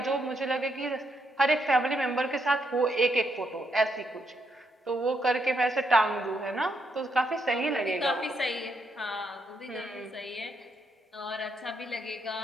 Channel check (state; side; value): normal; both; correlation 0.78